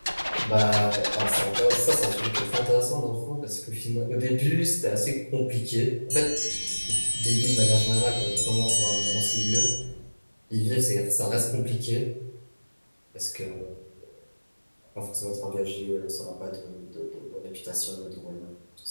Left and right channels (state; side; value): inverted; both; correlation -1.00